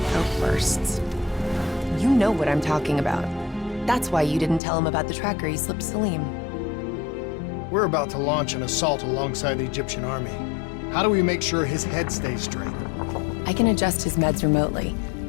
outbursts. You know what I'm talking about. That's why you didn't tell him about the tracker he slipped Salim. We're about to launch an assault alongside the Egyptian army. How do we make sure his head stays straight? I can adjust his meds remotely,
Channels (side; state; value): right; drops out; at 4.6 s